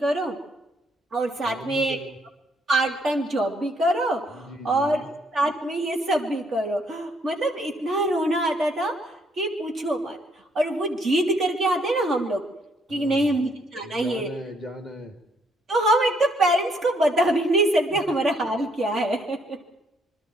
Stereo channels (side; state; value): both; normal; correlation 0.69